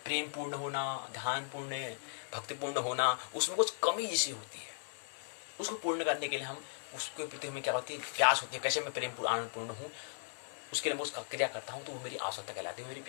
प्रेम पूर्ण होना, ध्यान पूर्ण, भक्तिपूर्ण होना, उसमें कुछ कमी जैसी होती है। उसको पूर्ण करने के लिए हम उसके प्रति हमें क्या होती है, प्यास होती है, कैसे मैं प्रेम आनंद पूर्ण हूँ, उसके लिए मैं उसका क्रिया करता हूँ, तो वो मेरी आवश्यकता कहलाती है, मेरी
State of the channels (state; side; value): silent; right; digital silence